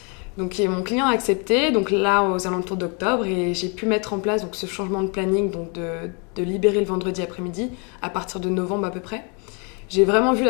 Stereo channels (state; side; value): quieter; right; 34.6 dB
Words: Donc mon client a accepté, donc là aux alentours d'octobre, et j'ai pu mettre en place donc, ce changement de planning, donc de libérer le vendredi après-midi à partir de novembre à peu près. J'ai vraiment vu